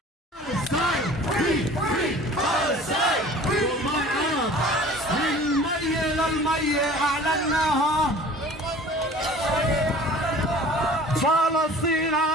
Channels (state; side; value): normal; both; correlation 0.45